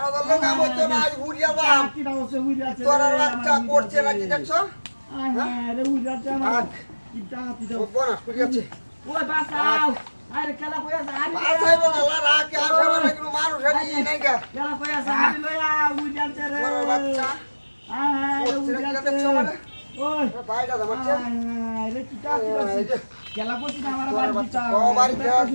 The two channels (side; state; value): both; inverted; correlation -1.00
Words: দল কাম হচ্ছে না আজ উড়িয়া বাম কিটা হচ্ছে উড়ে আছে তোর বাচ্চা করছে নাকি দেখছো আরে উড়ে আছে আমার রাখ কিটা হাতিটা ও বনা করিয়াছে ওই বাঁচাও আরে খেলা কই আছে আরে বাসাই বলা রাখ আসে মানে কিন্তু মানুষ এর নাই গা খেলা কই আছে আরে লয়া উড়ে আছে রে তোর বাচ্চা আরে করছে উড়ে নাকি আছে দেখছো মানে ওই ভাইটা তোমার আরে কিটা হাতিটা খেলা করছি না আমার বাড়ি দিতা ও বাড়ি